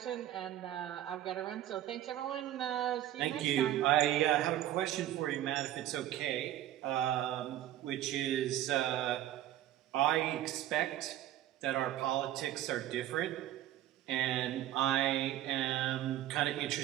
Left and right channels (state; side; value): quieter; left; 12.9 dB